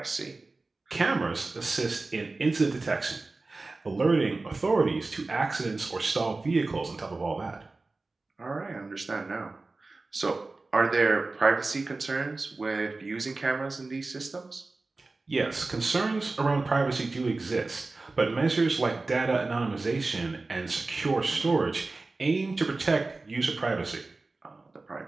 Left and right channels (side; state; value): left; quieter; 3.5 dB